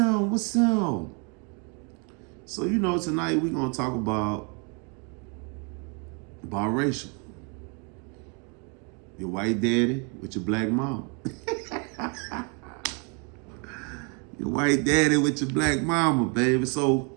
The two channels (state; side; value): quieter; left; 35.5 dB